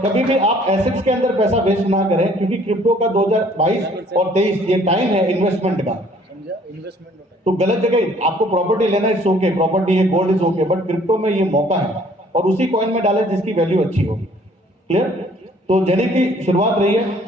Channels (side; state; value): both; normal; correlation 0.58